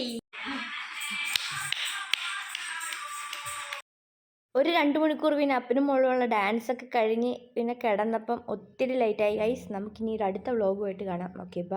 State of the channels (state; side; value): identical; both; correlation 1.00